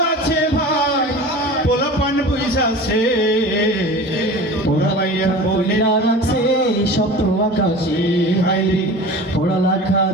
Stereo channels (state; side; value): normal; both; correlation 0.36